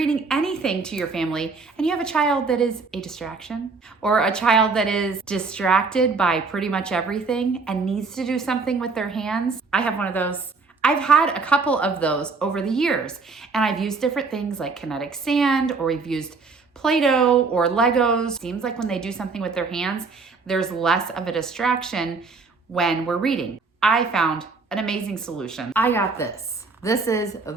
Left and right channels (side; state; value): left; quieter; 4.3 dB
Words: anything to your family, and you have a child that is a distraction, or a child that is distracted by pretty much everything and needs to do something with their hands? I have one of those. I've had a couple of those over the years, and I've used different things like kinetic sand, or we've used Play-Doh or Legos. Seems like when they do something with their hands, there's less of a distraction when we're reading. I found an amazing solution. I got this. This is